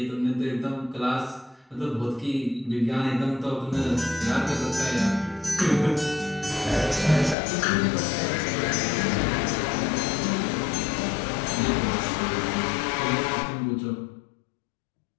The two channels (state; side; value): drops out; right; at 7.4 s